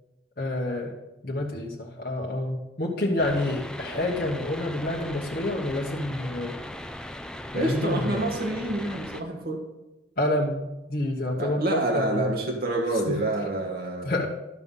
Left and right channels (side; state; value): both; normal; correlation 0.42